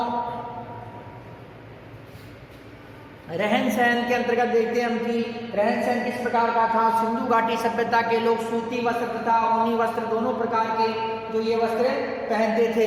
रहन सहन के अंतर्गत देखते हैं हम कि रहन सहन किस प्रकार का था। सिंधु घाटी सभ्यता के लोग सूती वस्त्र तथा ऊनी वस्त्र दोनों प्रकार के जो ये वस्त्र पहनते थे।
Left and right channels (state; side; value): identical; both; correlation 1.00